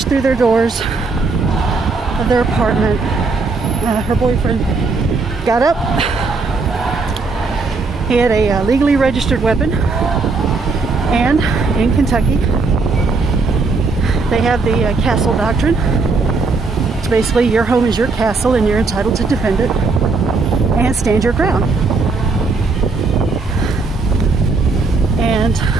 through their doors of their apartment. Her boyfriend got up. He had a legally registered weapon, and in Kentucky they have the castle doctrine. It's basically your home is your castle and you're entitled to defend it and stand your ground. And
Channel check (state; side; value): quieter; left; 4.0 dB